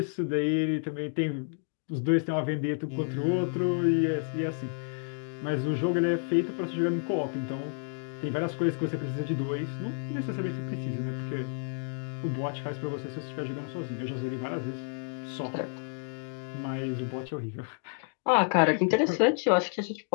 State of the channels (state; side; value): silent; right; 58 dB below the other